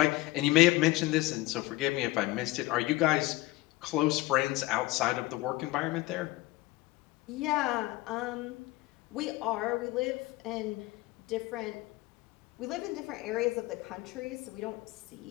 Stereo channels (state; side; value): quieter; right; 19.2 dB